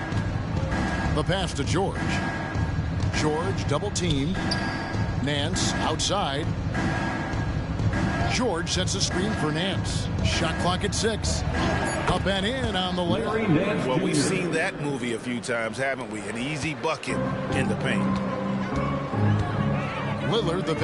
The pass to George. George double-teamed. Nance outside. George sets a screen for Nance. Shot clock at 6. Up and in on the layup. Well, we've seen that movie a few times, haven't we? An easy bucket in the paint. Lillard the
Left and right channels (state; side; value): identical; both; correlation 1.00